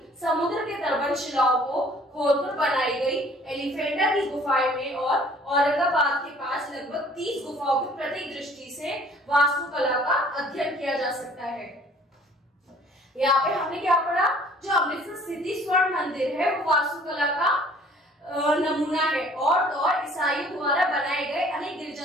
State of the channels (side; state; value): both; normal; correlation 0.54